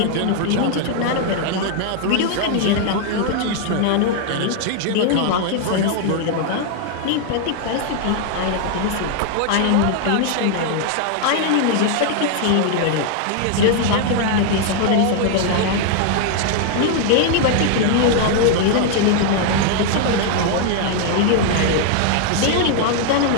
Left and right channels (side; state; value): both; different; correlation 0.00